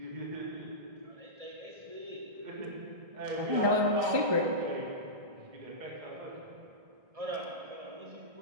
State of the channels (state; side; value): late; left; 1.6 ms